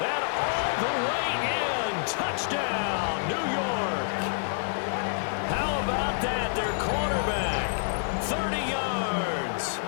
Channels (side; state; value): right; silent; 59 dB below the other